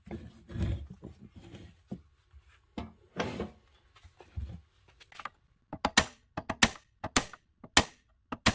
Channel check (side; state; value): both; identical; correlation 1.00